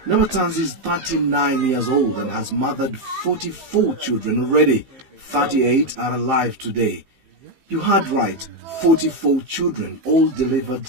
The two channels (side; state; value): left; late; 15 ms